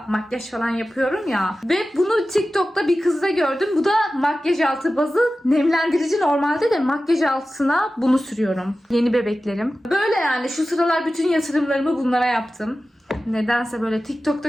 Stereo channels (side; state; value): both; normal; correlation 0.95